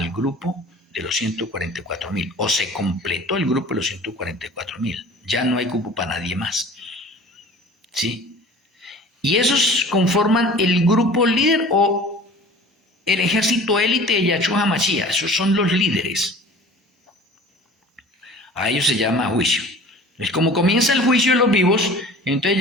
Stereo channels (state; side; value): normal; both; correlation 0.44